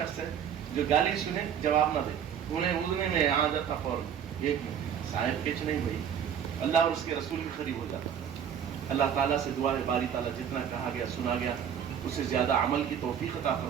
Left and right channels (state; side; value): quieter; left; 8.5 dB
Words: ہے جو گالی سنے جواب نہ دے، انہیں اڑنے میں آ جاتا فوراً، ایک منٹ صاحب کچھ نہیں بھائی، اللہ اور اس کے رسول کے قریب ہو جاتا. اللہ تعالیٰ سے دعا ہے باری تعالیٰ جتنا کہا گیا سنا گیا اس سے زیادہ عمل کی توفیق عطا